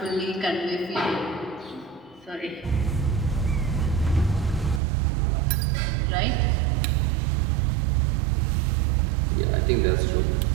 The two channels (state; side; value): drops out; left; at 4.8 s